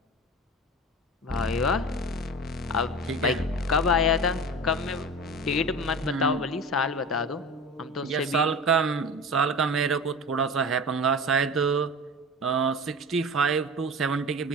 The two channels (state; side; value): normal; both; correlation 0.33